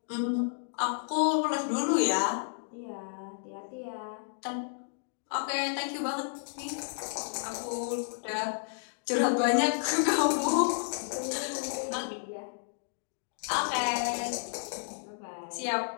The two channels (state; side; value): silent; right; digital silence